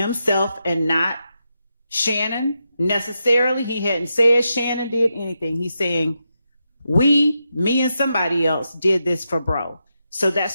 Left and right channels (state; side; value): inverted; both; correlation -0.86